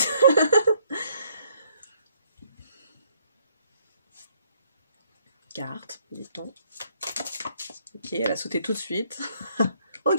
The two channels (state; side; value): inverted; both; correlation -0.67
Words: Carte, dit-on. Ok, elle a sauté tout de suite.